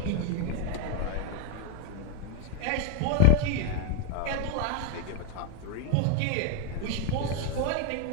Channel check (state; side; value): different; both; correlation 0.01